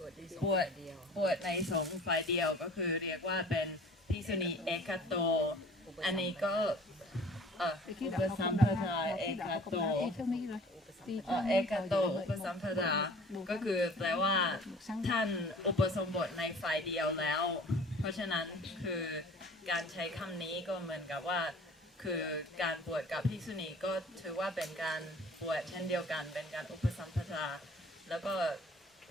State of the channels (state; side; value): normal; both; correlation 0.47